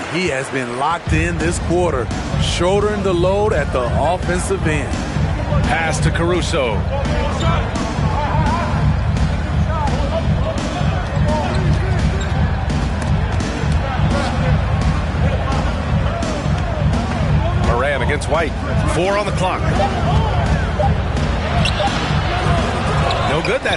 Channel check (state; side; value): identical; both; correlation 1.00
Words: he has been locked in this quarter, shouldering the load at the offensive end. Pass to Caruso. Morant against White. 4 on the clock. No good